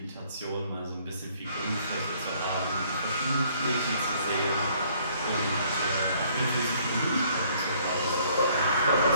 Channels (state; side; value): inverted; both; correlation -0.62